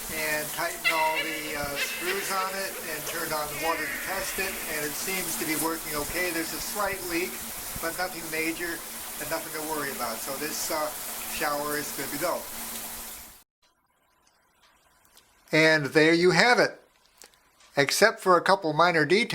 and tightened all the screws on it and turned on the water to test it, and it seems to be working okay. There's a slight leak, but nothing major and nothing to worry about. So this shower is good to go. And there you have it. Except for a couple minor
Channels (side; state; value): both; identical; correlation 1.00